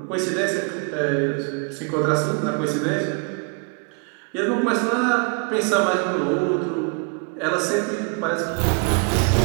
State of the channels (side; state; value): left; quieter; 37.5 dB